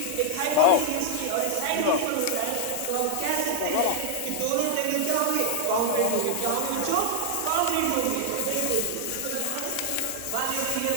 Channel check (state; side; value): different; both; correlation 0.00